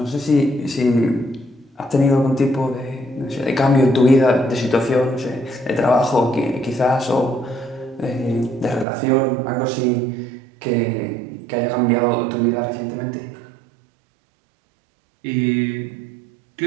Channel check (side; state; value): left; drops out; at 8.8 s